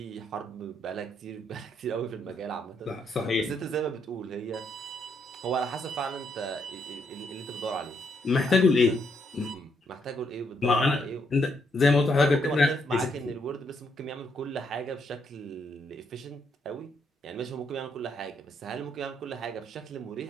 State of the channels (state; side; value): normal; both; correlation 0.75